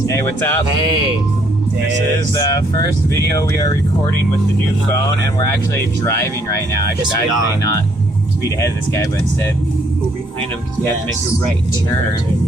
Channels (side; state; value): both; normal; correlation 0.68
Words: Hey, what's up? Hey. This is the first video we are recording with the new phone, and we're actually driving right now. I should actually not speed ahead of this guy, but instead go behind him because we have to make a right turn.